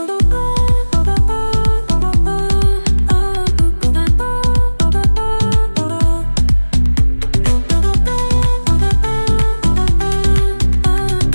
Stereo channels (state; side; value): inverted; both; correlation -1.00